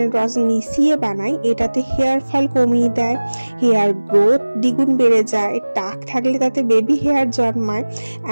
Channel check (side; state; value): both; inverted; correlation -1.00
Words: রস মিশিয়ে বানাই। এটাতে হেয়ার ফল কমিয়ে দেয়, হেয়ার গ্রোথ দ্বিগুণ বেড়ে যায়, টাক থাকলে তাতে বেবি হেয়ার জন্মায়,